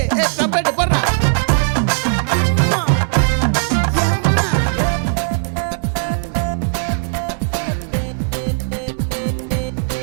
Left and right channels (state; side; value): silent; left; digital silence